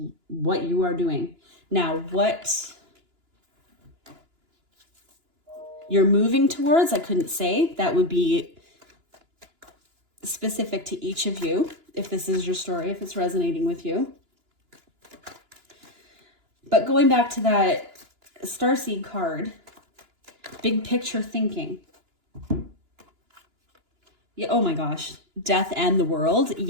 what you are doing. Now, what you're moving towards, I couldn't say. That would be specific to each of you, if this is your story, if it's resonating with you. But going back to that starseed card, big picture thinking. Yeah, oh my gosh, death and the world.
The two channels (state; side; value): late; left; 2.9 ms